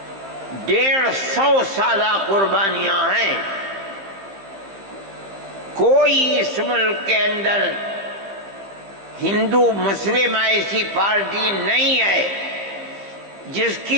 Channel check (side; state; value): left; late; 15 ms